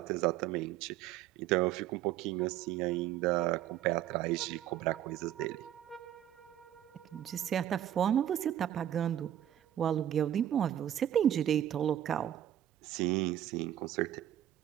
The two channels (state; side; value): quieter; left; 11.4 dB